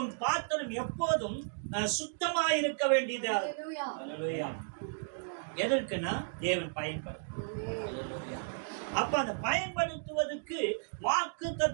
பாத்திரம் எப்போதும் சுத்தமா இருக்க வேண்டியது. அல்லேலூயா. எதற்குன்னா தேவன் பயன்படும். அப்ப அந்த பயன்படுத்துவதற்கு வாக்கு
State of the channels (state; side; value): silent; left; digital silence